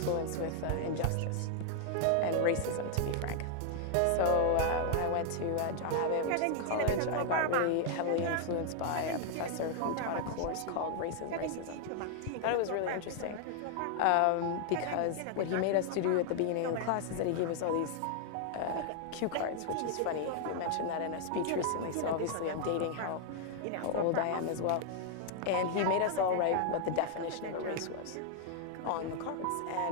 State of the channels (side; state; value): both; different; correlation 0.00